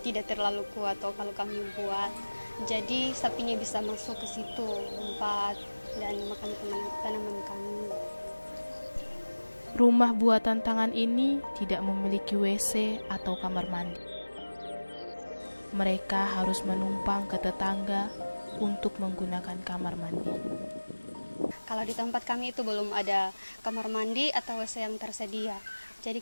tidak terlalu kuat toh kalau kami buat, jadi sapinya bisa masuk ke situ lompat dan makan tanaman kami. Rumah buatan tangan ini tidak memiliki WC atau kamar mandi. Mereka harus menumpang ke tetangga untuk menggunakan kamar mandi. Kalau di tempat kami itu belum ada kamar mandi atau WC yang tersedia, jadi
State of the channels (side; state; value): both; inverted; correlation -1.00